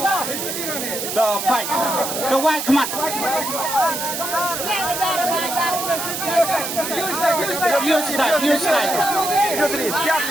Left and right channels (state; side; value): noise; right; hiss, 4 dB below the sound